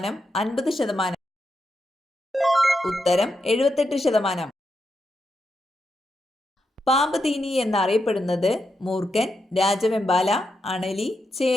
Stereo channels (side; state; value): both; normal; correlation 0.85